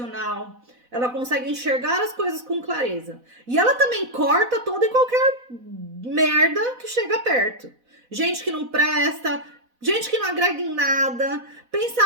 ela consegue enxergar as coisas com clareza. E ela também corta toda e qualquer merda que chega perto. Gente que não presta, gente que não agrega em nada,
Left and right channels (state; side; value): late; left; 4.0 ms